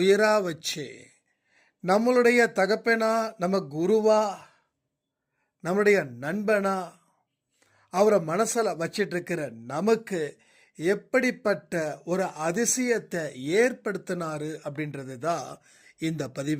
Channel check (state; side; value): identical; both; correlation 1.00